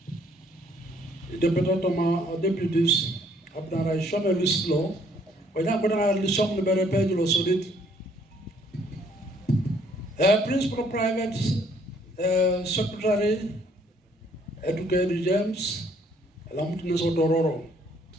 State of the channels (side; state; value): both; normal; correlation 0.64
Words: deputy toma deputies abdara shome lislo wanya kodana lisong libere page lo sodit principal private secretary Educated James, Lamutines Odororo.